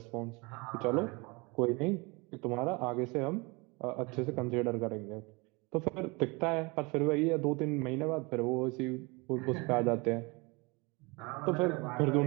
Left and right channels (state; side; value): quieter; left; 27.2 dB